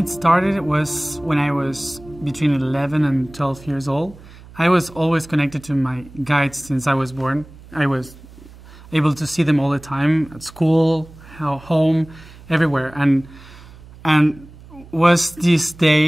started, it was when I was between 11 and 12 years old. I was always connected to my guides since I was born. I was able to see them all the time at school, home, everywhere. And was this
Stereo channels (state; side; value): noise; right; hum, 20 dB below the sound